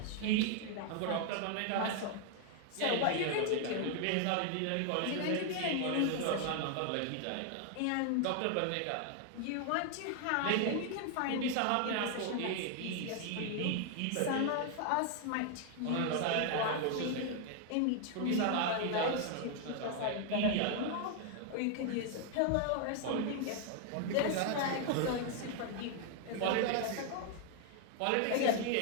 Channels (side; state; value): both; different; correlation 0.00